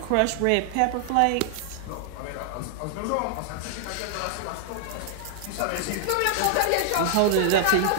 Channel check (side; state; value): both; different; correlation 0.00